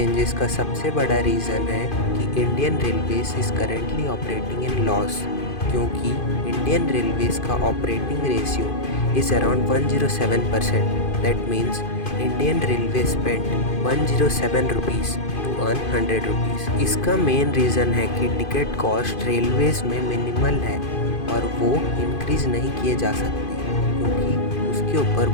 का सबसे बड़ा रीज़न है कि Indian railways is currently operating in loss, क्योंकि इंडियन रेलवेज का operating ratio is around 107%। That means Indian railway spend 107 rupees to earn 100 rupees. इसका मेन रीज़न है कि टिकट कॉस्ट रेलवेज़ में मिनिमल है और वो इंक्रीज़ नहीं किए जा सकते क्योंकि उसके ऊपर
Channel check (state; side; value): late; right; 2.5 ms